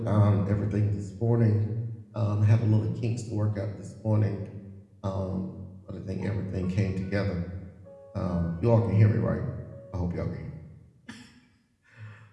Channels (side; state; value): both; identical; correlation 1.00